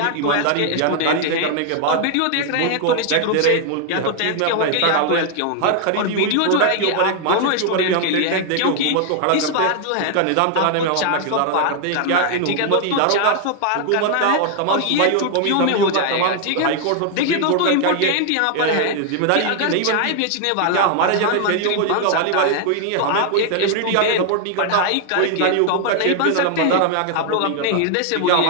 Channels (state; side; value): different; both; correlation 0.00